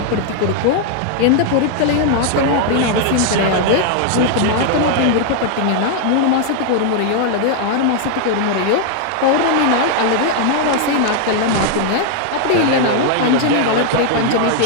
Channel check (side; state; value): both; different; correlation 0.00